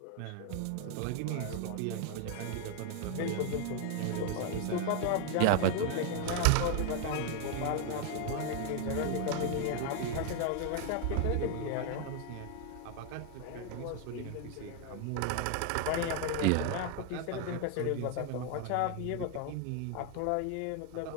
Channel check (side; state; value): both; different; correlation 0.00